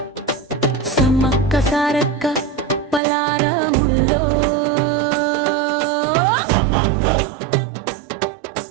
సమ్మక్క సారక్క పలారముల్లో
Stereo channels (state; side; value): drops out; left; at 3.0 s